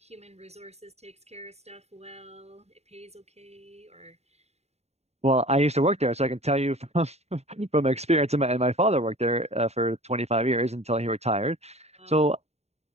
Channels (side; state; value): left; late; 0.31 ms